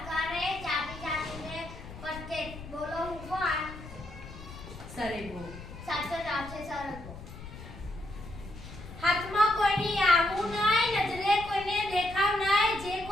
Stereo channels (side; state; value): left; noise; rumble, 14 dB below the sound